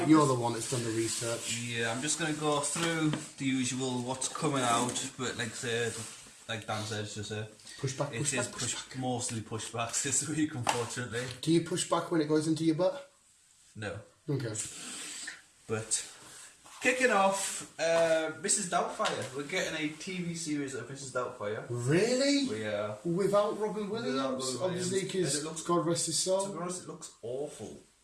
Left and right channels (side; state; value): both; identical; correlation 1.00